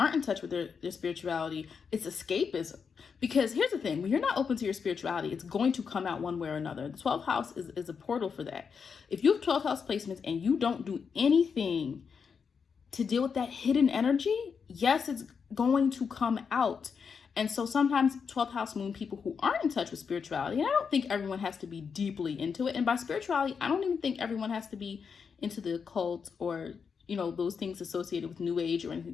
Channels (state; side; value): quieter; right; 6.1 dB